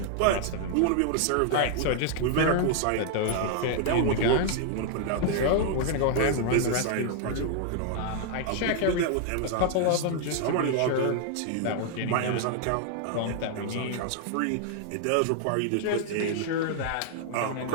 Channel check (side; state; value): both; different; correlation -0.01